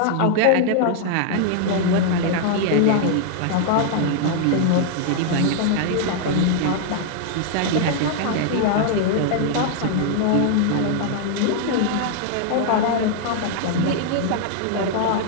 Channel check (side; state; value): both; different; correlation -0.01